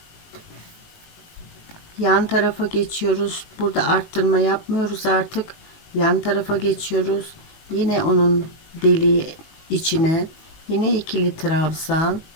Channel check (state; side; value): late; right; 19 ms